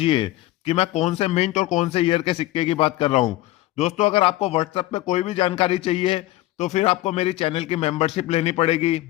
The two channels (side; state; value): right; quieter; 16.7 dB